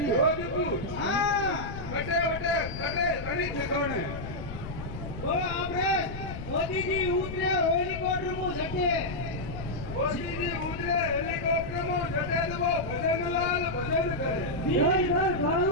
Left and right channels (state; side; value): noise; left; rumble, 9 dB below the sound